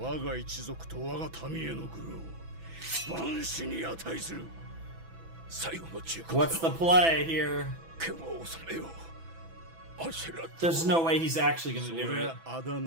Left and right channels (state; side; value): late; left; 6.0 ms